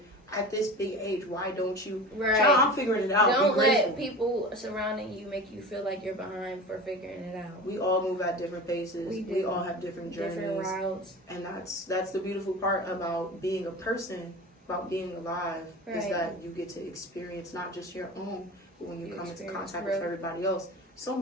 At this big age, why don't you? Right. Child, I'm figuring it out. Don't let people surrounding you make you feel like you're behind for figuring it out. We all move at different paces. We all have different journeys, different routes, and that's the beautiful part about being a person, about being alive, is that you get to experience not just your own, but when you come into contact with everybody else, so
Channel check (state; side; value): normal; both; correlation 0.33